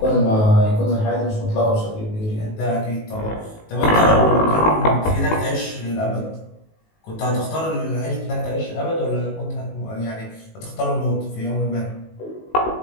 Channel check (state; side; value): late; right; 19 ms